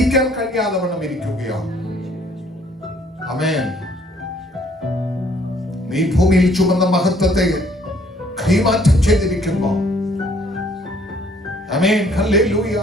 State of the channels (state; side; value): normal; both; correlation 0.61